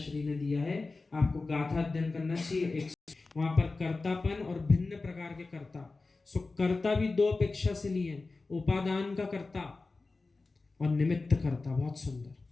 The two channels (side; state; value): right; quieter; 3.6 dB